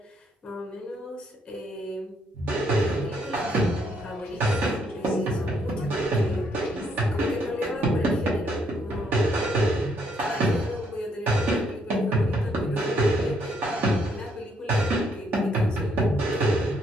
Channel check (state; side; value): normal; both; correlation 0.71